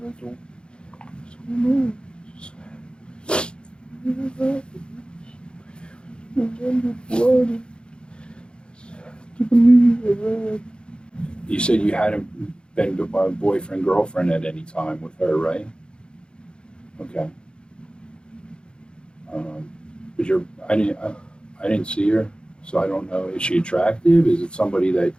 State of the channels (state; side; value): late; right; 0.053 ms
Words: I don't know. Just what happened. Remember blood. And to believe I read. You said you hadn't been boyfriend, girlfriend at any time with her, right? Okay. But I didn't see her, so I don't know. Is she attractive? Is it somebody that?